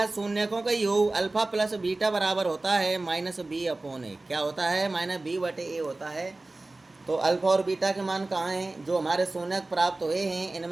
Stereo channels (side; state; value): left; quieter; 3.0 dB